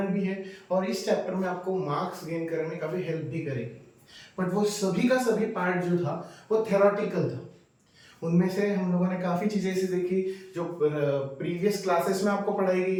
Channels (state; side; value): identical; both; correlation 1.00